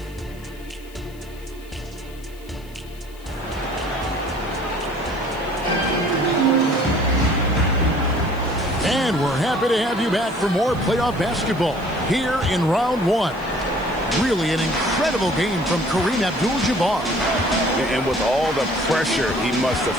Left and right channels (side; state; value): left; noise; hiss, 24 dB below the sound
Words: And we're happy to have you back for more playoff basketball here in round 1. Really an incredible game from Kareem Abdul-Jabbar. And with all the pressure he must have